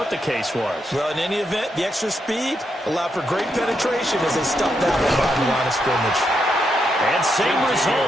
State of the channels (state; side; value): normal; both; correlation 0.81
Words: the case was. Well, in any event, the extra speed allowed for great penetration as they stuffed that one behind the line of scrimmage. And same